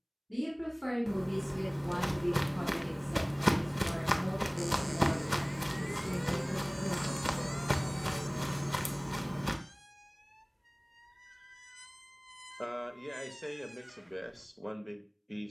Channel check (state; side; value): identical; both; correlation 1.00